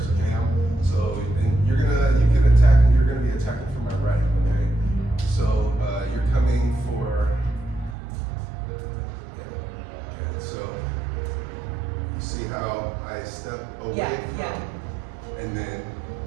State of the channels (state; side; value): drops out; left; at 8.0 s